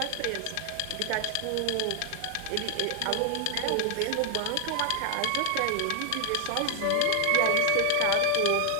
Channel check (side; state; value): both; different; correlation 0.00